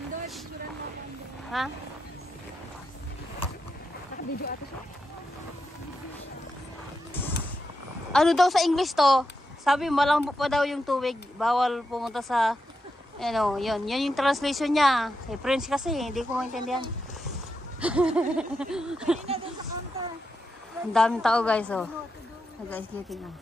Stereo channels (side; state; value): both; normal; correlation 0.86